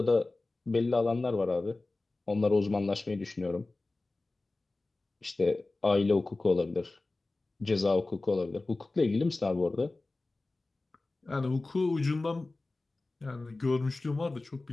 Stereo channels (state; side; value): quieter; right; 3.2 dB